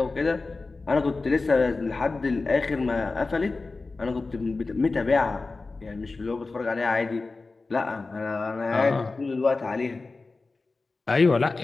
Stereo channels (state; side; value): quieter; right; 3.7 dB